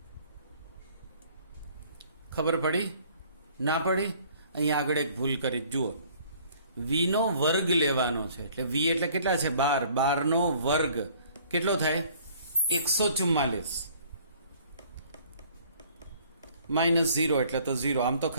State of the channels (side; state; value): both; inverted; correlation -0.56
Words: ખબર પડી ના પડી? અહીંયા આગળ એક ભૂલ કરી, જુઓ, v નો વર્ગ લેવાનો છે એટલે v એટલે કેટલા છે 12, 12 નો વર્ગ કેટલો થાય 144 -0 એટલે તો 0. આમ તો